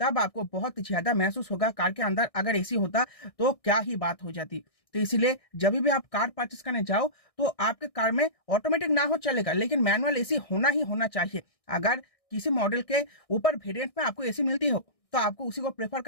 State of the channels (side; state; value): right; late; 1.6 ms